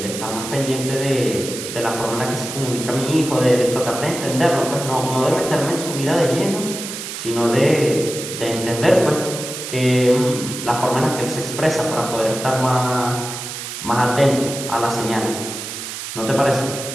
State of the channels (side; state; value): right; noise; hiss, 8 dB below the sound